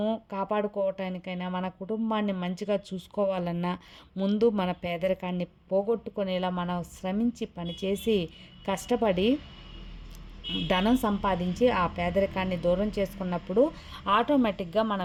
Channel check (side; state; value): both; identical; correlation 1.00